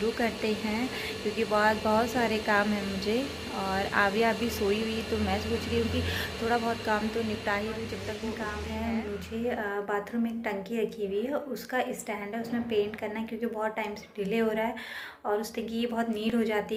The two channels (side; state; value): both; identical; correlation 1.00